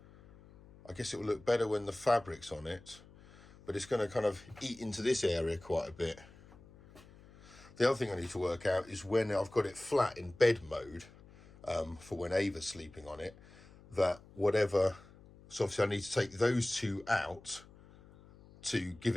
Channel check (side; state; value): left; noise; hum, 23 dB below the sound